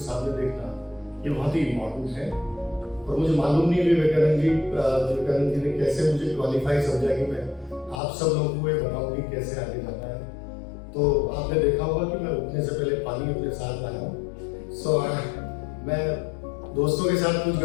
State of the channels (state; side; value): drops out; right; at 8.0 s